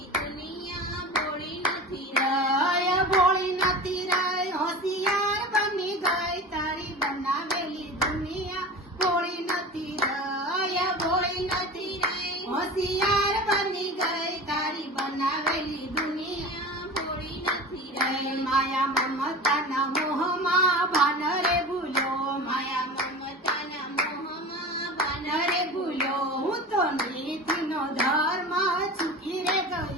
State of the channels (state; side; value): normal; both; correlation 0.32